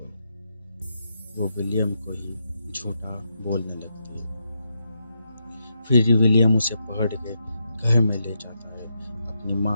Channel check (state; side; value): inverted; both; correlation -0.82